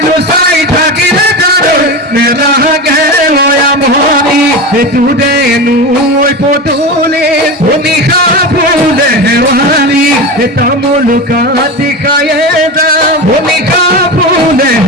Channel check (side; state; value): both; normal; correlation 0.23